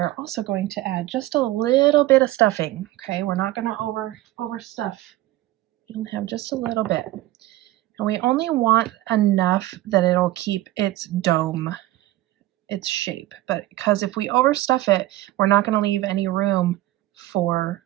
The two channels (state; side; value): quieter; left; 16.2 dB